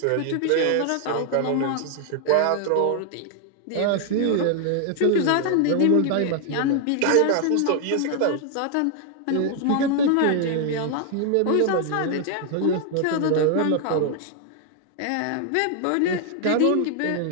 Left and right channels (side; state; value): both; different; correlation 0.00